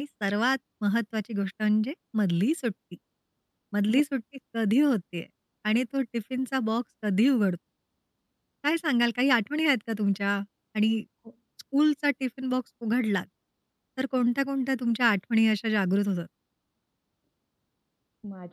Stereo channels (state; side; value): identical; both; correlation 1.00